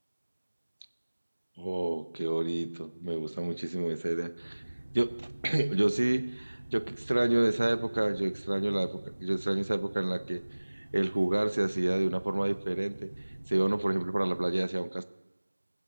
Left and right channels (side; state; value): both; inverted; correlation -1.00